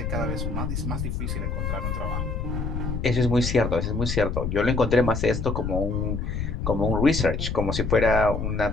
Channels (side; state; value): left; noise; rumble, 2 dB below the sound